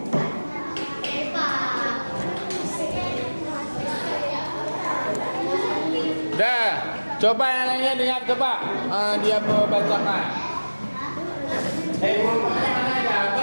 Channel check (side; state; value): both; inverted; correlation -1.00